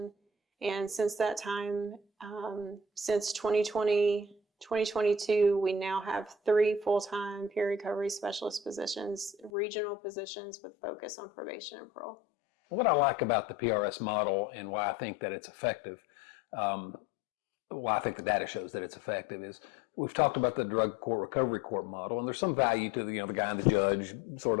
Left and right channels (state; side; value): drops out; right; at 9.5 s